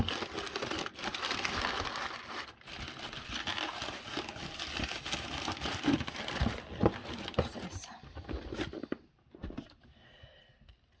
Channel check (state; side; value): identical; both; correlation 1.00